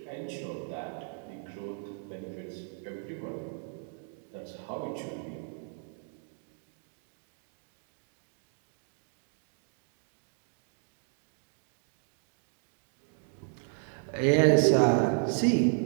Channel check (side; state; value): left; silent; 55 dB below the other